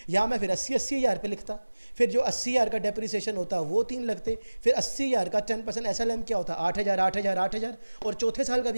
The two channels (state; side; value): inverted; both; correlation -1.00